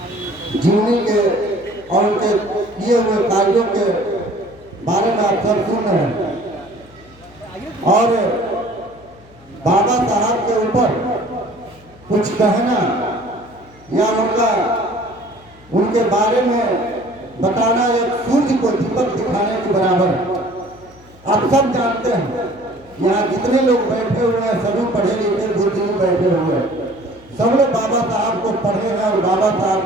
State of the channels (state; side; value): noise; left; hum, 25 dB below the sound